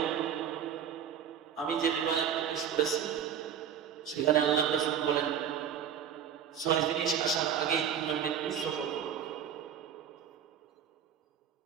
আমি যে রিওয়ায়াত পেশ করেছি সেখানে আল্লাহ রাসূল বলেন 6 জিনিস আসার আগেই তোমরা মৃত্যুর সফর করো,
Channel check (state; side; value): quieter; left; 8.3 dB